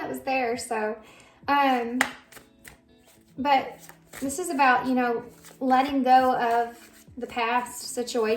was there. So, but this is about, letting go of the past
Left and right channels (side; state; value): both; identical; correlation 1.00